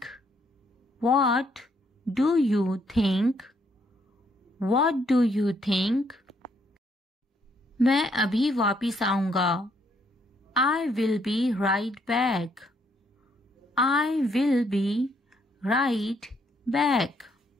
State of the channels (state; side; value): normal; both; correlation 0.71